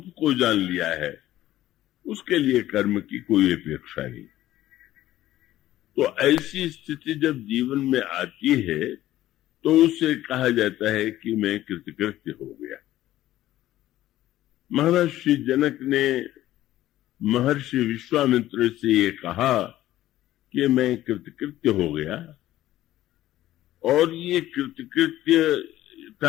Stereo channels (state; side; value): quieter; right; 14.3 dB